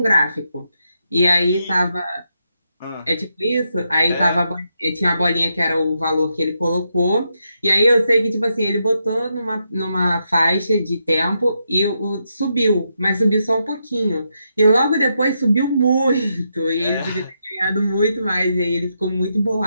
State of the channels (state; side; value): inverted; both; correlation -0.82